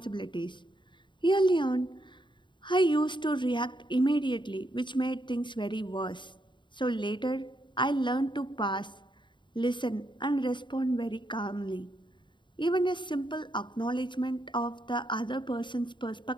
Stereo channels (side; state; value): right; late; 0.23 ms